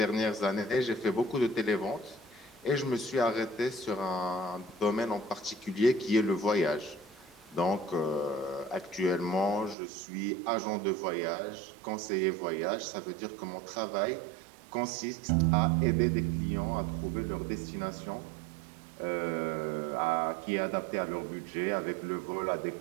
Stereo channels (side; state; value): left; drops out; at 9.8 s